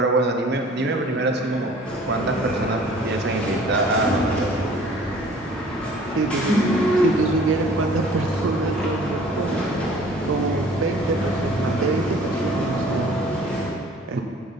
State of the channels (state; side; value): normal; both; correlation 0.50